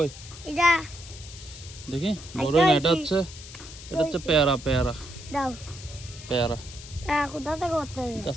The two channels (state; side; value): noise; left; hiss, 15 dB below the sound